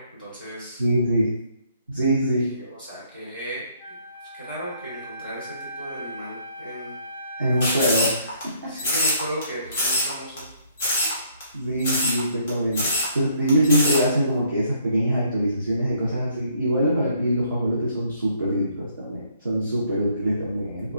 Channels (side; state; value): both; inverted; correlation -0.66